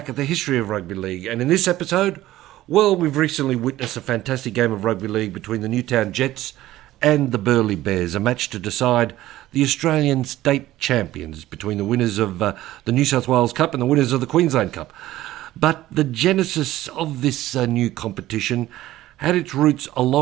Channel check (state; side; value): quieter; left; 15.2 dB